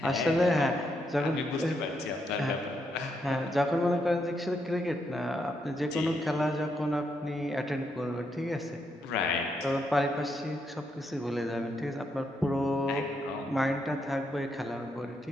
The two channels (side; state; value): both; normal; correlation 0.79